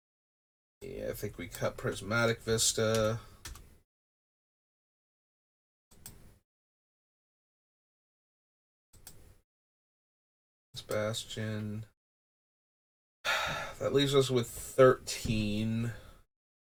Yeah, I think we cut Prismatic Vista. Bastion. That leaves us with 13.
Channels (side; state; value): both; identical; correlation 1.00